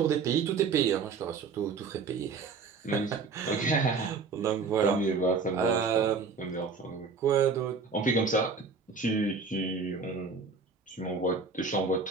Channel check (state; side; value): quieter; left; 4.8 dB